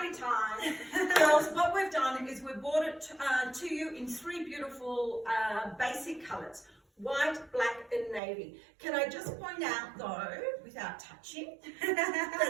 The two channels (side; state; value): left; drops out; at 8.2 s